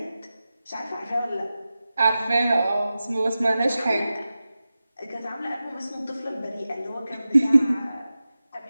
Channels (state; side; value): inverted; both; correlation -0.94